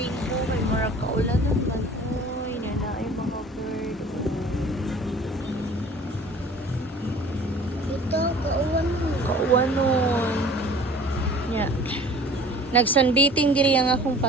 May mura kaulan naman. Uy, nanay mga bird. Ito, kauwan mo. Kauwan nun. Yeah. Nag-sunbathing diri ang akong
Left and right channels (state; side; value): normal; both; correlation 0.47